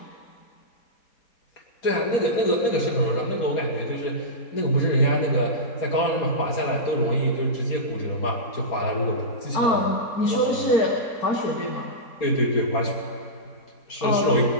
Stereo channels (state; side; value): late; right; 4.3 ms